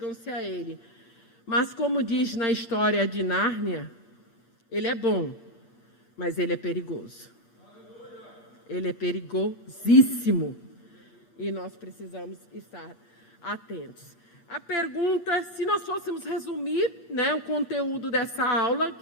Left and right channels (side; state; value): right; late; 8.8 ms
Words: a Ele. Mas, como diz na história de Nárnia, Ele é bom, mas Ele é perigoso. Ele é perigosíssimo. E nós precisamos estar atentos. A pergunta, se nós fôssemos resumir, o conteúdo dessa aula,